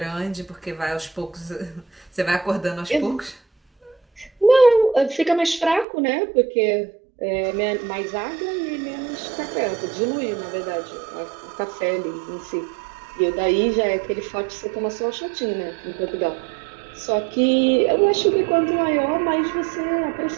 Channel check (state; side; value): drops out; left; at 5.9 s